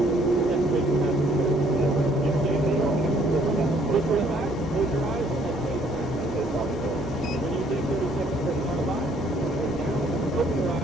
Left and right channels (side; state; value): both; normal; correlation 0.63